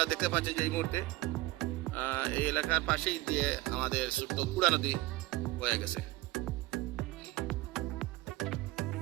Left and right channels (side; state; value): left; quieter; 19.0 dB